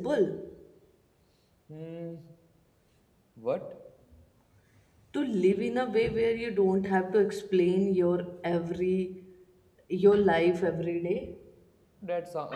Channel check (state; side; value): identical; both; correlation 1.00